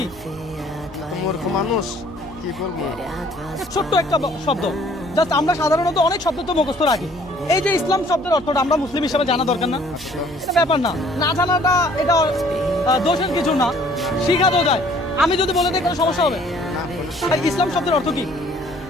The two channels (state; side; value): noise; right; hum, 21 dB below the sound